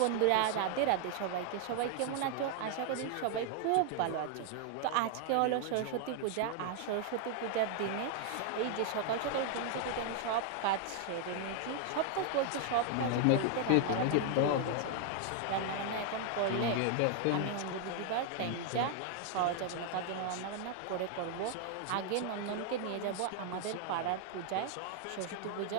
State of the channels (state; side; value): different; both; correlation 0.00